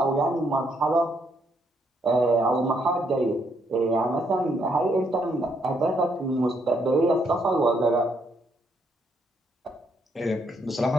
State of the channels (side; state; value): both; normal; correlation 0.73